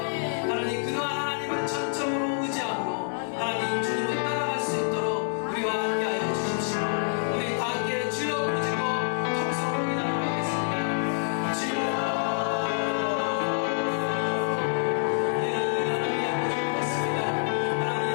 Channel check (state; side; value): silent; right; 60 dB below the other